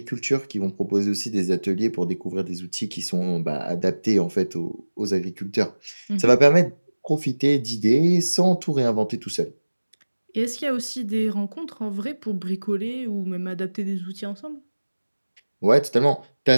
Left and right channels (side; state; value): both; inverted; correlation -1.00